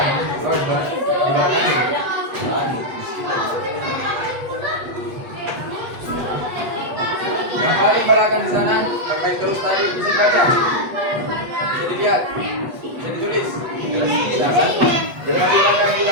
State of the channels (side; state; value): left; late; 8.1 ms